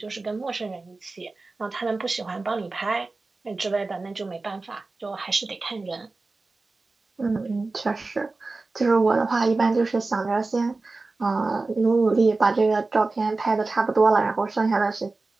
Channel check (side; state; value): left; quieter; 3.5 dB